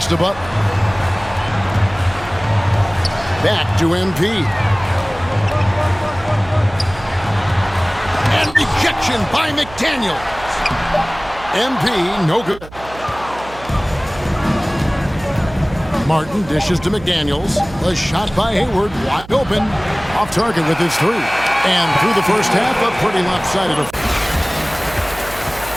the butt. Back to MP. And rejection by McDaniel. MP, no good. Martin dishes to McDaniels. A shot by Hayward, wide open. Off target with his 3. And through the first half, a pretty lopsided affair.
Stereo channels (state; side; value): noise; right; hum, 17 dB below the sound